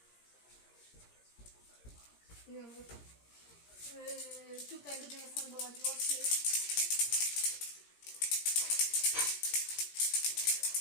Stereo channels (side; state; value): right; late; 17 ms